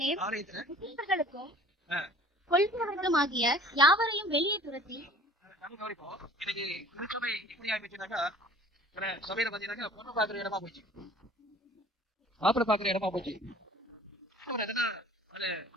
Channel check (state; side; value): normal; both; correlation 0.49